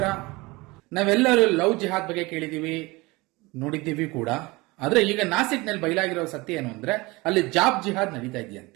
ನಾವೆಲ್ಲರೂ ಲವ್ ಜಿಹಾದ್ ಬಗ್ಗೆ ಕೇಳಿದೀವಿ, ನೋಡಿದ್ದೀವಿ ಕೂಡ. ಆದ್ರೆ ಈಗ ನಾಸಿಕ್ನಲ್ಲಿ ಬಯಲಾಗಿರೋ ಸತ್ಯ ಏನು ಅಂದ್ರೆ ಅಲ್ಲಿ ಜಾಬ್ ಜಿಹಾದ್ ನಡೀತಾ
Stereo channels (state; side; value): quieter; left; 23.0 dB